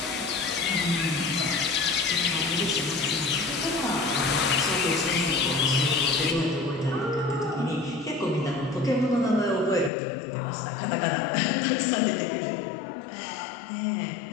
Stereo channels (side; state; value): right; drops out; at 9.9 s